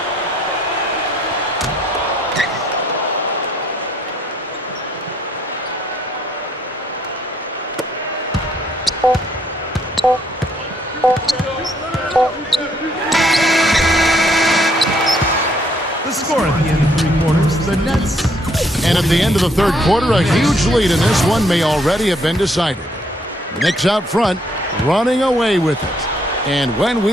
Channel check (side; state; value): both; normal; correlation 0.68